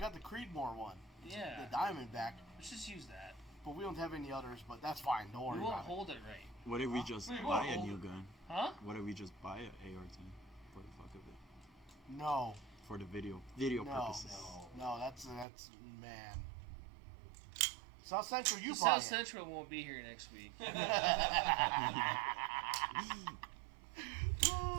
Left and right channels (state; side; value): drops out; left; at 15.5 s